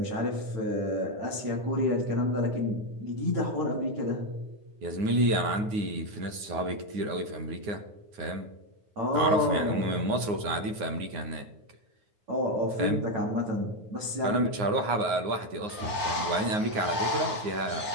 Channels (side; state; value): left; late; 9.6 ms